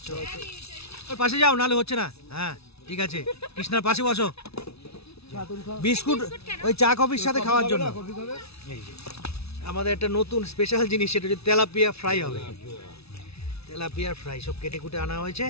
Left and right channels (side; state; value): right; late; 0.79 ms